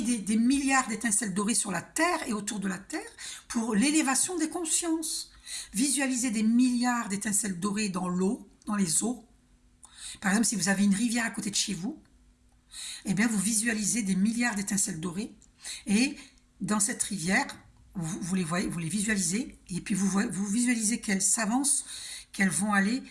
des milliards d'étincelles dorées sur la Terre et autour de la Terre pour l'élévation des consciences. Visualiser des milliards d'étincelles dorées dans l'eau, dans les eaux. Par exemple, si vous avez une rivière à côté de chez vous, eh bien, vous visualisez des milliards d'étincelles dorées et dans cette rivière, vous les voyez, vous les visualisez et puis vous visualisez qu'elles s'avancent, qu'elles vont aller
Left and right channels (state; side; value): identical; both; correlation 1.00